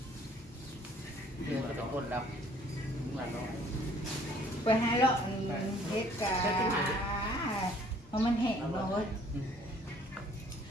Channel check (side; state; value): both; normal; correlation 0.58